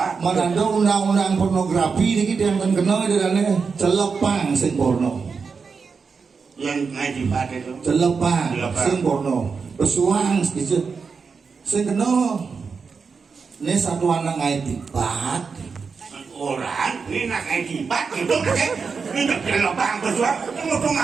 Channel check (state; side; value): quieter; left; 5.3 dB